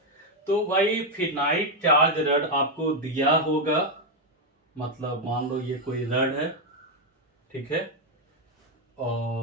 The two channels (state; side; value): normal; both; correlation 0.04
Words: तो भाई फिनाइट चार्ज रड आपको दिया होगा, मतलब मान लो ये कोई रड है, ठीक है,